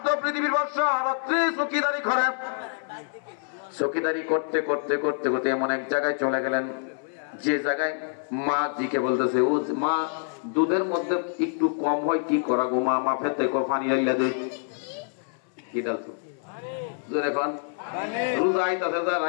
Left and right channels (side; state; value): right; silent; 61 dB below the other